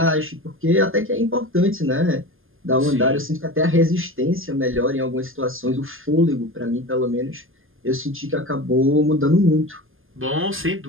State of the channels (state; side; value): late; left; 0.59 ms